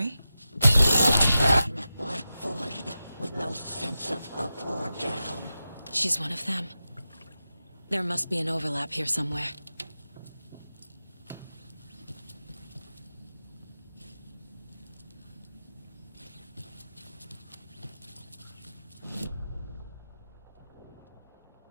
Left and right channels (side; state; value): both; inverted; correlation -0.92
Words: With no sense of up or down. She's one of them. There must be an overlap here somewhere.